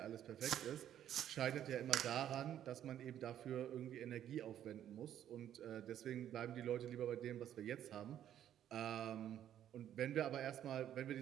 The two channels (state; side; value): quieter; left; 10.8 dB